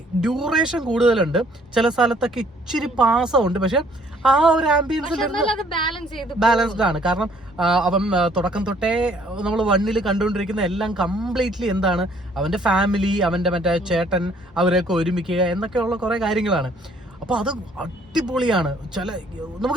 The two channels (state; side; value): normal; both; correlation 0.61